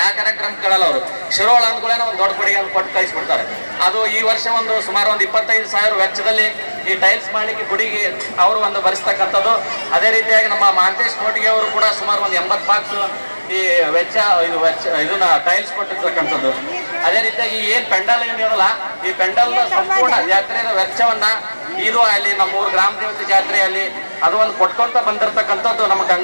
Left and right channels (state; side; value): inverted; both; correlation -1.00